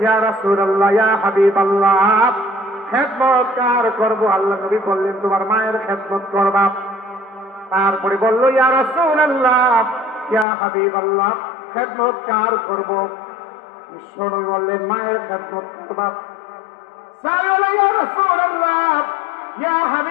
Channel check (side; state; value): right; drops out; at 10.5 s